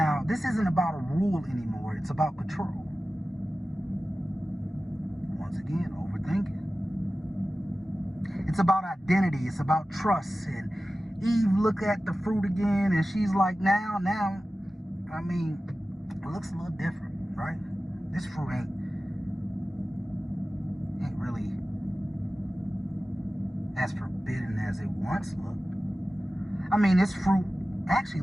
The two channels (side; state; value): both; normal; correlation 0.95